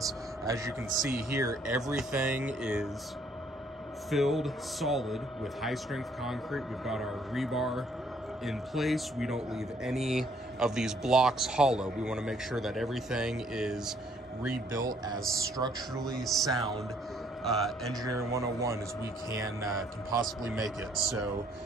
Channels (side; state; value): both; normal; correlation 0.65